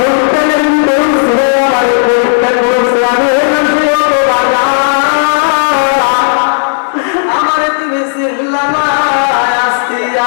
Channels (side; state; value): right; silent; digital silence